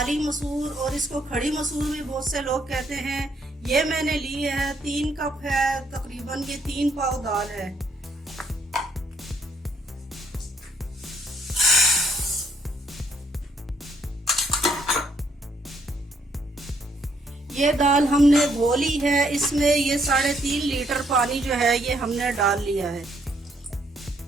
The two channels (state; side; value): normal; both; correlation 0.71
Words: मसूर और इसको खड़ी मसूर भी बहुत से लोग कहते हैं। ये मैंने ली है 3 कप है, तकरीबन ये 3 पाव दाल है। ये दाल हमने धो ली है। इसमें ये 3.5 लीटर पानी जो है ये हमने डाल लिया है।